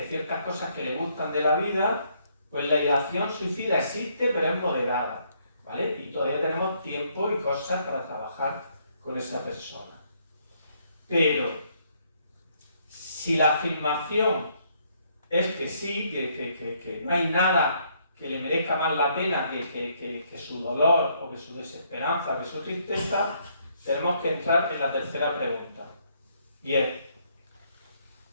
ciertas cosas que le gustan de la vida, pues la ideación suicida existe, pero es moderada, ¿vale? Y todavía tenemos tiempo y cosas para trabajar con esa persona. Pero, si la afirmación es que sí, que no hay nada que le merezca más la pena que su dolor, o que su desesperanza, o que su tristeza, tenemos que entrar en la tercera pregunta. Y es,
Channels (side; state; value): both; inverted; correlation -0.70